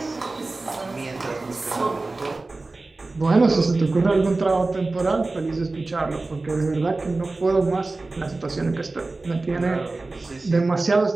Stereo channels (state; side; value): quieter; left; 3.3 dB